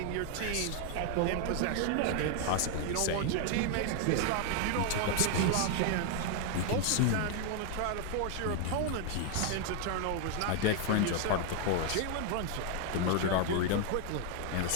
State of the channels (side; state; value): both; different; correlation 0.00